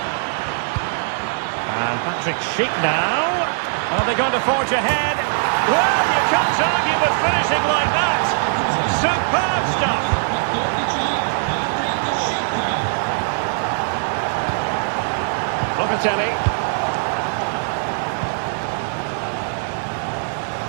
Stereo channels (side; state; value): left; silent; digital silence